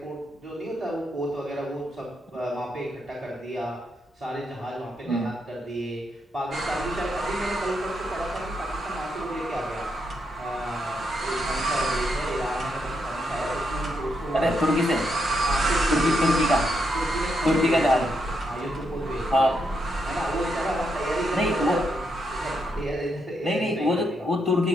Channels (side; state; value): both; normal; correlation 0.80